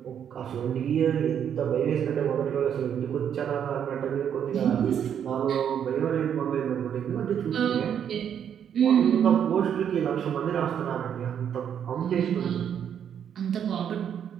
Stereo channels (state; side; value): quieter; left; 8.7 dB